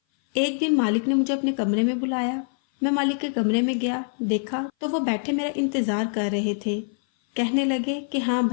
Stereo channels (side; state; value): right; silent; 58 dB below the other